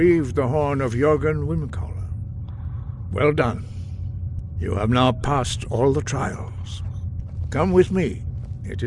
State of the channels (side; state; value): both; identical; correlation 1.00